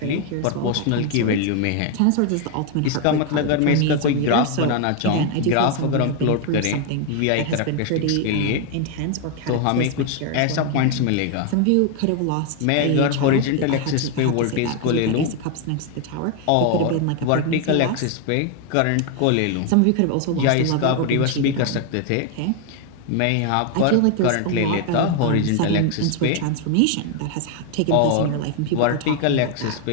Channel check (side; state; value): both; different; correlation 0.01